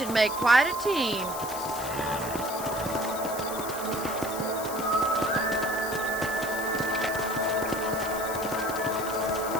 make quite a team.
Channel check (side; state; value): left; noise; hiss, 9 dB below the sound